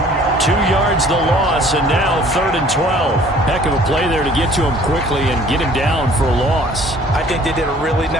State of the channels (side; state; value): both; normal; correlation 0.54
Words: 2 yards the loss, and now 3rd and 12. Heck of a play there to get to him quickly and get him down for a loss. I think they did a really